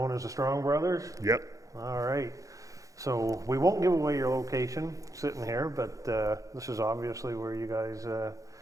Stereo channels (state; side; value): late; left; 0.16 ms